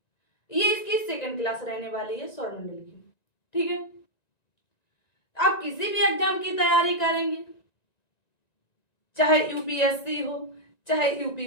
ये इसकी सेकंड क्लास रहने वाली है सौरमंडल की। ठीक है, आप किसी भी एग्जाम की तैयारी करेंगे, चाहे यूपीएससी हो, चाहे यूपी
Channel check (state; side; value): late; right; 1.9 ms